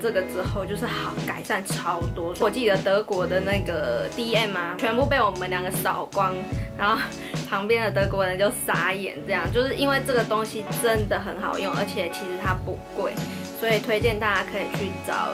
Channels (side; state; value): both; identical; correlation 1.00